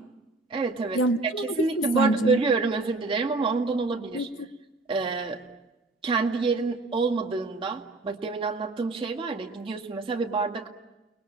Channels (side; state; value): left; quieter; 3.2 dB